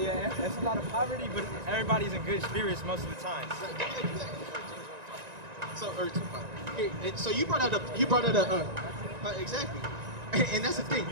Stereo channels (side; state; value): left; late; 1.9 ms